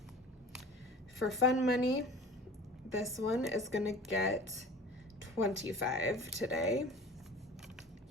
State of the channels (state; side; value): normal; both; correlation 0.41